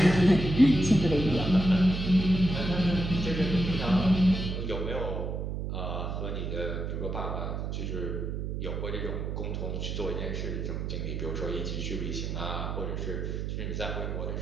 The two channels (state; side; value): noise; right; hum, 3 dB below the sound